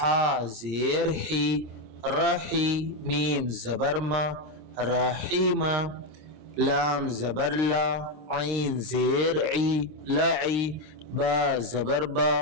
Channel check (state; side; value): late; left; 26 ms